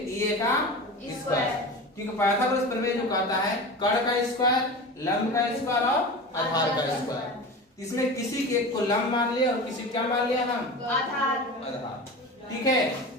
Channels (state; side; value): normal; both; correlation 0.31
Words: का स्क्वायर, क्योंकि पाइथागोरस प्रमेय जो कहता है कड़ का स्क्वायर, लंब का स्क्वायर और आधार का स्क्वायर। इसमें किसी के एक को लंब मान लिया और किसी क्या मान लिया हम, आधार। ठीक है,